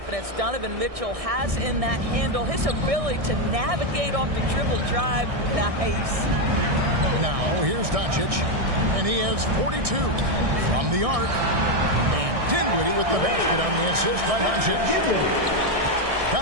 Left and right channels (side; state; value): left; late; 1.6 ms